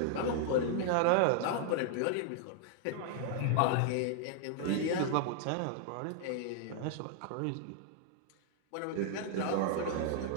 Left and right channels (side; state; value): both; different; correlation 0.00